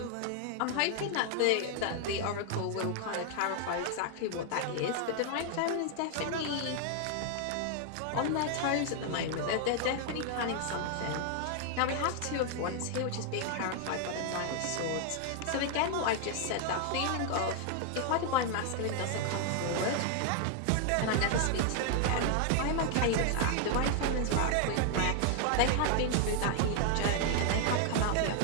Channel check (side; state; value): both; different; correlation 0.00